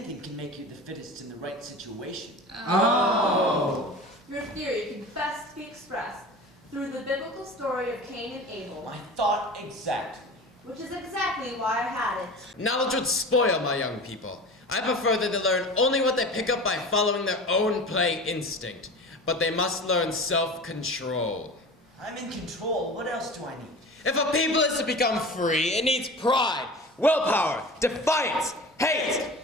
can make you the fittest in the right situation. Oh. Your theory can best be expressed through the biblical story of Cain and Abel, I thought exactly. which is exactly why I had it. Knowledge would spoil my young people. I prefer that they learn only what they pick up by following their own play instinct. But they must learn self-control. I'm in control. What else do I need? If a people is to become free, it needs pride, willpower, defiance, hate,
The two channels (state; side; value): normal; both; correlation 0.36